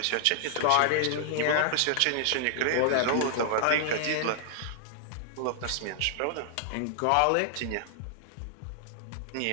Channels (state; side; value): different; both; correlation -0.01